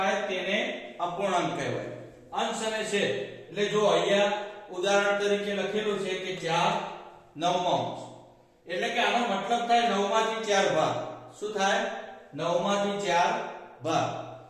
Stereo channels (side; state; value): both; identical; correlation 1.00